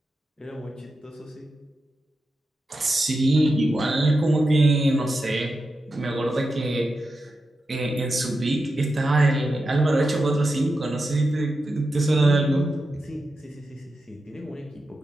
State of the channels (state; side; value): normal; both; correlation 0.89